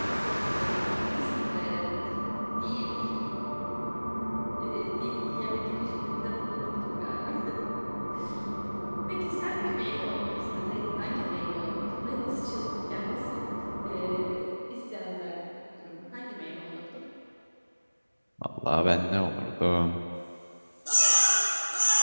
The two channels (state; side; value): inverted; both; correlation -1.00